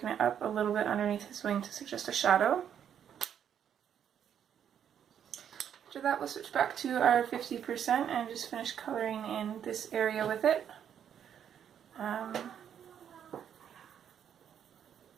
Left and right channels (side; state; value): left; quieter; 8.9 dB